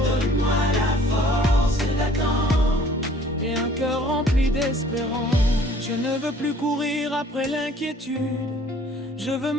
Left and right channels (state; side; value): normal; both; correlation 0.55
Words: donne-moi la force d'attendre et un cœur rempli d'espérance. Je ne veux plus courir après l'inquiétude, je veux